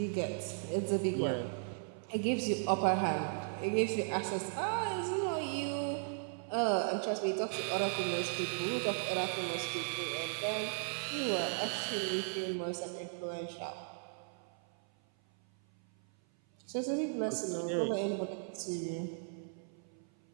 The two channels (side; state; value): left; silent; 54 dB below the other